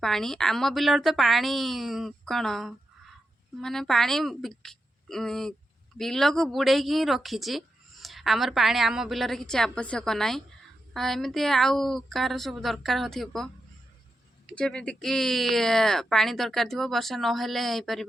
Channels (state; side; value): normal; both; correlation 0.87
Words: पानी आम बिलर तो पानी कौन माने पानी बिल को बुड़े ही रखी आमर पानी आम बिलर किसी आवश्यक ना एमती आउ कार सब दरकार हो जमीक पानी दरकार थी वर्षा नहेले हो